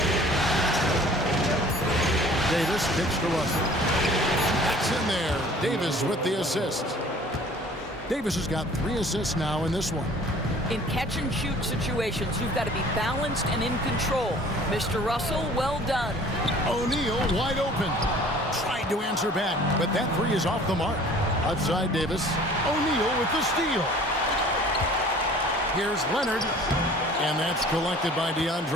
Davis kicks to Russell. That's in there. Davis with the assist. Davis has got 3 assists now in this one. In catch-and-shoot situations, you've got to be balanced and in control. Mr. Russell, well done. O'Neal wide open. Tried to answer back, but that 3 is off the mark. Outside Davis. O'Neal with the steal. Here's Leonard. And that's collected by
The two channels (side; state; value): both; normal; correlation 0.50